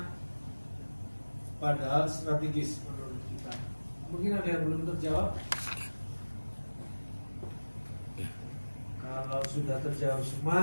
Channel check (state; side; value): inverted; both; correlation -1.00